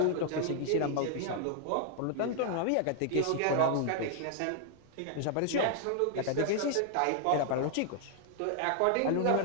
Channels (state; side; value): different; both; correlation 0.00